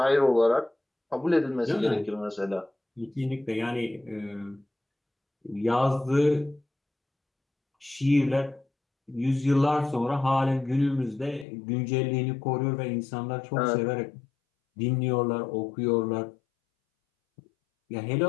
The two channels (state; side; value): drops out; right; at 11.5 s